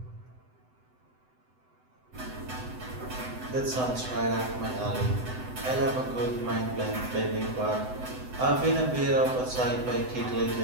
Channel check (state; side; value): late; left; 7.9 ms